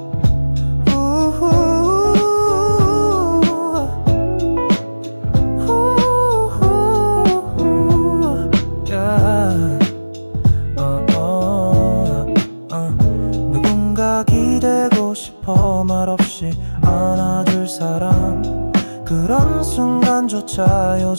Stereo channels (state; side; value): inverted; both; correlation -1.00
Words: 누군가 기대고 싶어 말없이 안아줄 사람. 그런 순간조차